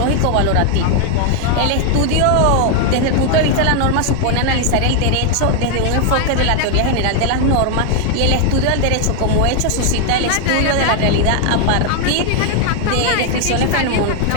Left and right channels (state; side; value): different; both; correlation 0.00